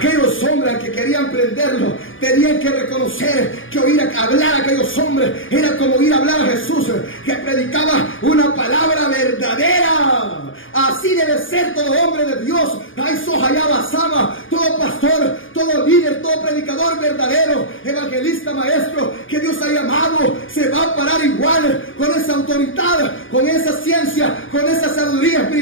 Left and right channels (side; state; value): right; late; 0.58 ms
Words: hombres que querían prenderlo tenían que reconocer que oír hablar a aquellos hombres era como oír hablar a Jesús, que predicaba una palabra verdadera. Así debe ser todo hombre de Dios. Ay, Sohayaba Sama, todo pastor, todo líder, todo predicador verdadero, evangelista, maestro, que Dios ha llamado, se va a parar igual, con esa autoridad, con esa ciencia, con esa sabiduría